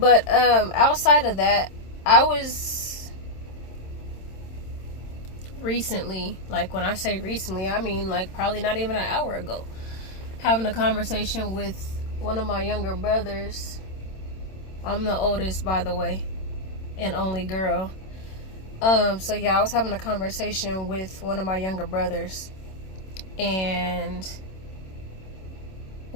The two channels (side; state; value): right; late; 27 ms